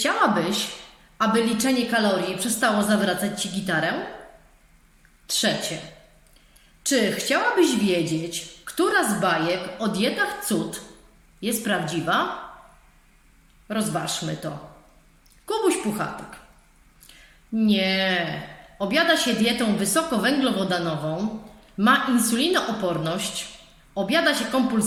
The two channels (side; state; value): both; identical; correlation 1.00